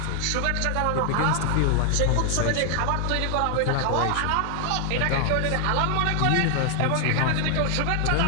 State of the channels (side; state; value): both; different; correlation 0.00